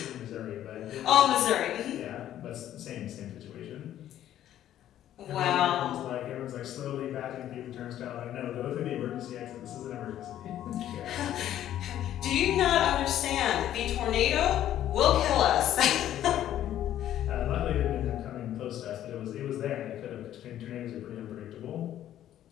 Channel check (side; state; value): right; quieter; 11.9 dB